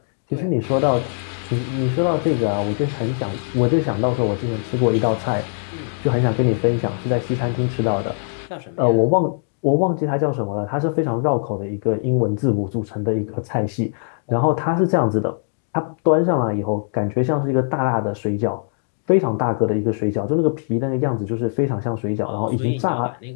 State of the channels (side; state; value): right; silent; digital silence